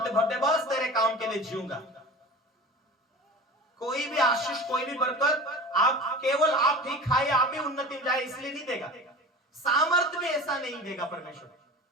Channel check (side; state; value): both; normal; correlation 0.35